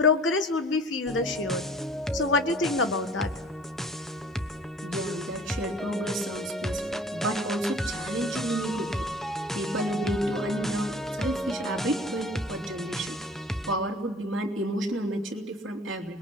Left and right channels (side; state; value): both; normal; correlation 0.48